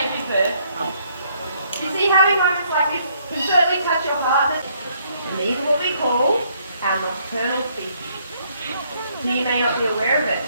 you, sir. You see, having moments like this can certainly touch your heart, and these are what we call our nocturnal species. Now, you may not be aware of it,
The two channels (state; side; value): inverted; both; correlation -0.68